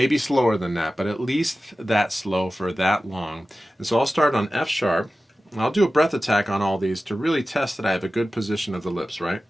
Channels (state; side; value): normal; both; correlation 0.95